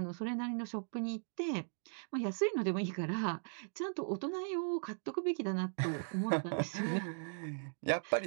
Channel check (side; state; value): left; silent; digital silence